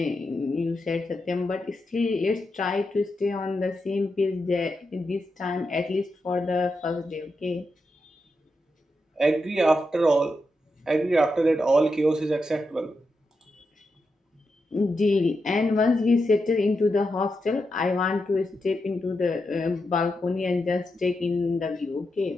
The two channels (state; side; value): normal; both; correlation 0.86